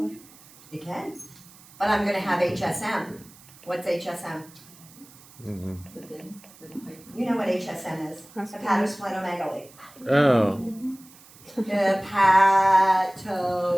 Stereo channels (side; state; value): right; noise; hiss, 23 dB below the sound